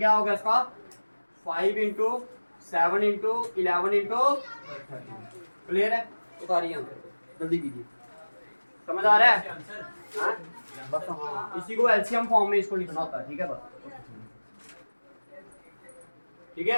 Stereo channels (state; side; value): inverted; both; correlation -1.00